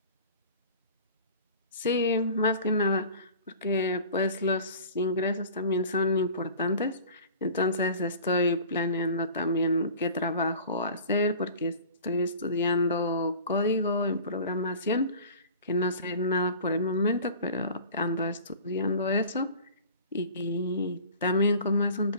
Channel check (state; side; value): inverted; both; correlation -0.42